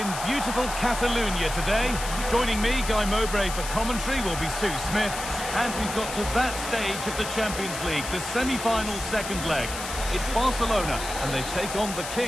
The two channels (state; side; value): noise; left; hiss, 8 dB below the sound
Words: beautiful Catalonia today. Joining me, Guy Mowbray, for commentary will be Sue Smith. And we've got to that stage of the Champions League, the semi-final second leg. It's Barcelona, and they take on the